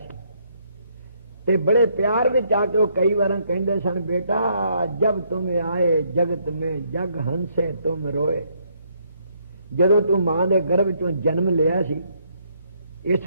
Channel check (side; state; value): both; inverted; correlation -0.71